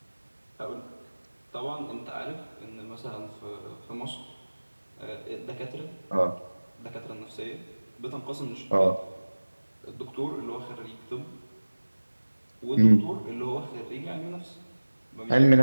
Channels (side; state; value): both; inverted; correlation -1.00